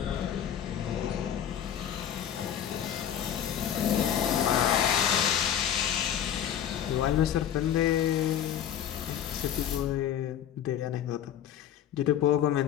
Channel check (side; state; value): right; quieter; 9.9 dB